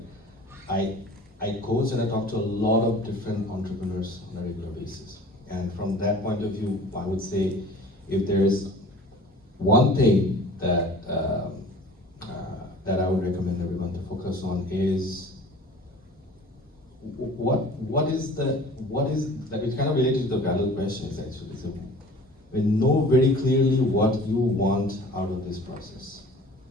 I coach and I talk to a lot of different entrepreneurs on a regular basis. And from that point of view, I would say, if there's one thing that that I would recommend everyone to focus on is what is that, it's kind of related to the value questions actually. So we know very clearly what you want out of this process,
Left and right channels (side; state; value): both; normal; correlation 0.45